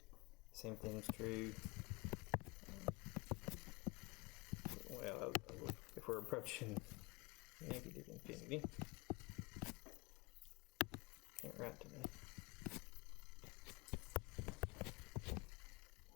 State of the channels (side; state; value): right; quieter; 25.9 dB